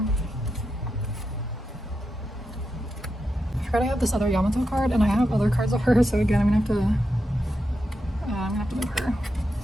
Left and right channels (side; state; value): both; normal; correlation 0.87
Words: forgot I have this other Yamato card, and I have other cards of her, so again, I'm gonna have to move her.